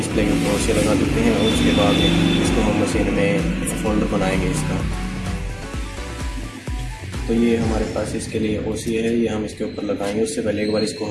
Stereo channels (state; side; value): identical; both; correlation 1.00